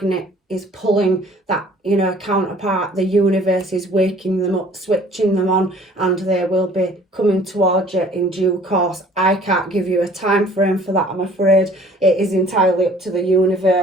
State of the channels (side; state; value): both; normal; correlation 0.53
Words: is pulling that, you know, counterpart, the universe is waking them up, switching them on, and they will be coming towards you in due course. I can't give you a time frame for that, I'm afraid. It is entirely up to the